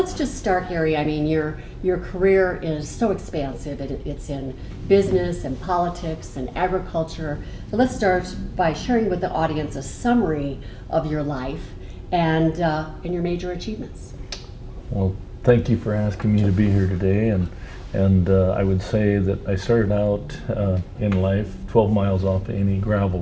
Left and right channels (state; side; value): identical; both; correlation 1.00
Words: just start, Gary. I mean, your career is so expansive. It's in business and politics and agriculture. So let's start by sharing with the audience a summary of your life and your major achievements. Well, thank you for asking me to be here today. And I would say that I started out in life 12 miles off any gravel